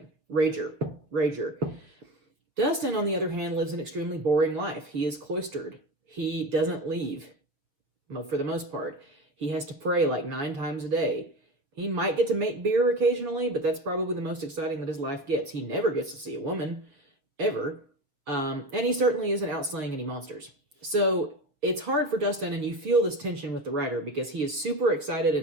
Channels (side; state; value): left; late; 7.1 ms